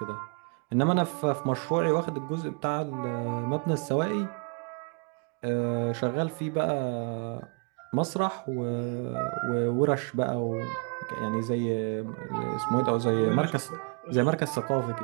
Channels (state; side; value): quieter; left; 35.7 dB